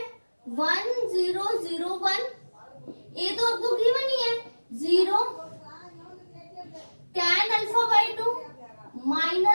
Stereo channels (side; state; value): both; inverted; correlation -1.00